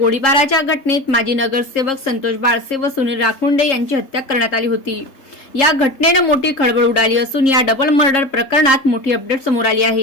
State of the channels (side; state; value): right; late; 3.7 ms